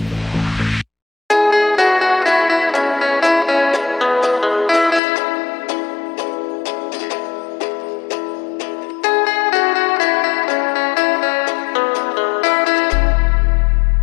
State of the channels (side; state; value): right; drops out; at 5.0 s